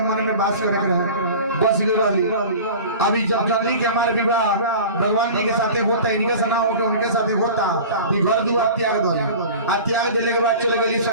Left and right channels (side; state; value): both; inverted; correlation -0.38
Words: मन में वास करे रहे बस गई। अभी जब जल्दी के हमारे विवाह भगवान जी के साथे होता इनके से ना होकर उनके साथे होता घर दुआर त्याग दो आ त्याग देने के बाद चले गई